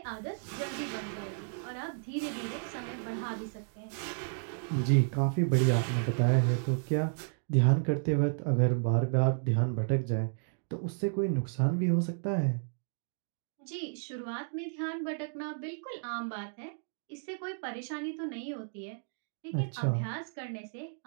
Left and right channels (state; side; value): silent; left; digital silence